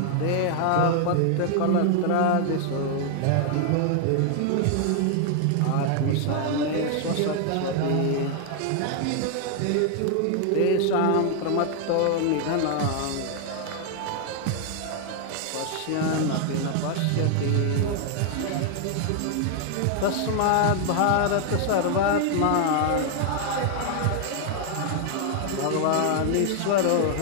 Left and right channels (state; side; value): different; both; correlation 0.00